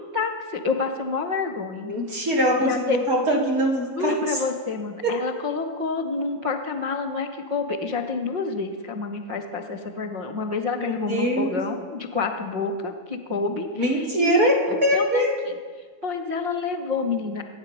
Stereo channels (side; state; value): left; late; 5.5 ms